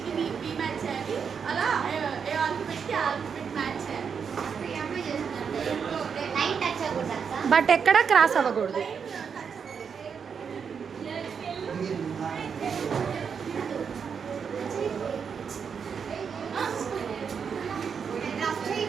బట్ ఎక్కడ క్రాస్ అవ్వకూడదు.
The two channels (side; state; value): left; quieter; 6.6 dB